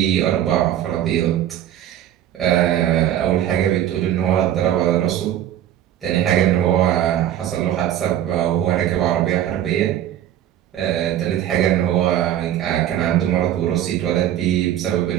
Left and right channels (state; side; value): quieter; left; 11.4 dB